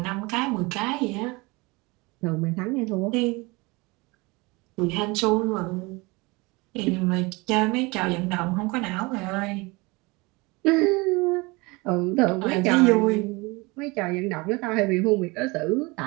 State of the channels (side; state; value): left; quieter; 25.0 dB